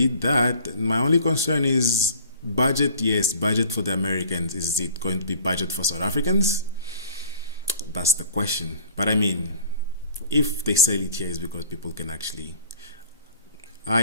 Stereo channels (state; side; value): inverted; both; correlation -0.48